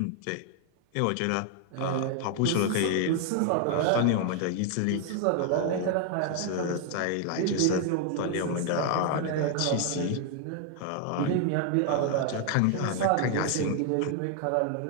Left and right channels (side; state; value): both; different; correlation 0.00